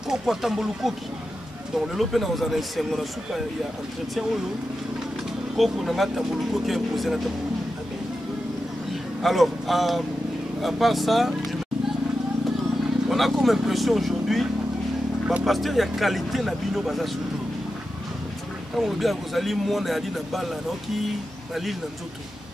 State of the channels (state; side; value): normal; both; correlation 0.90